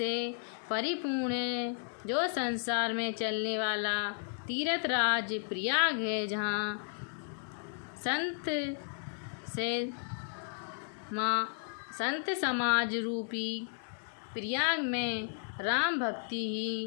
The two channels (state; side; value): silent; right; 55 dB below the other